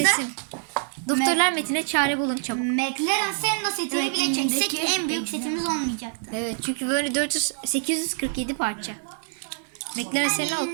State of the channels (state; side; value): silent; left; digital silence